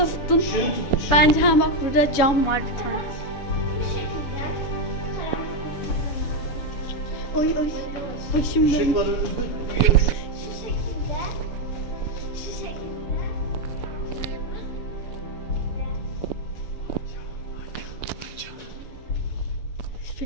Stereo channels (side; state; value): right; late; 6.9 ms